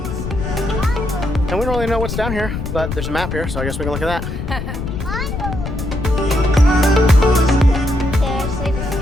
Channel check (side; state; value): left; noise; rumble, 5 dB below the sound